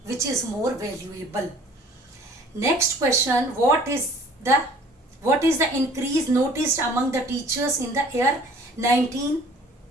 which is more valuable. Next question, what is the increase noticed among the teachers in the year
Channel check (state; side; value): normal; both; correlation 0.52